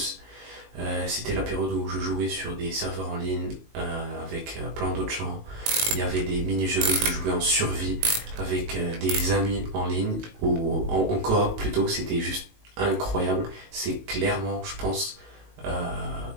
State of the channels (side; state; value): left; late; 18 ms